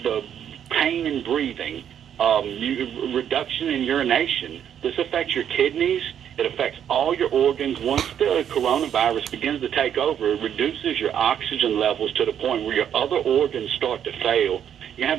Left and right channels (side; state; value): left; quieter; 9.3 dB